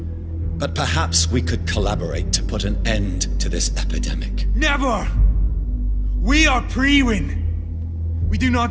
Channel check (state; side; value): identical; both; correlation 1.00